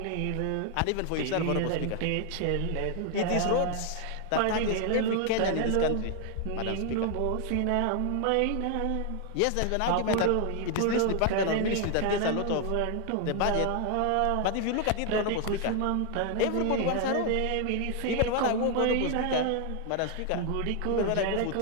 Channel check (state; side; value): different; both; correlation 0.00